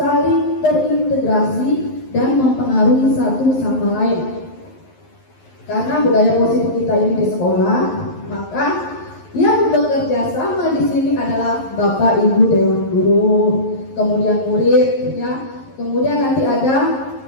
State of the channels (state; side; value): late; right; 11 ms